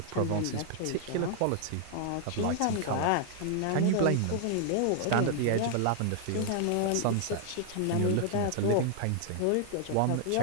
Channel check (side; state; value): both; different; correlation 0.00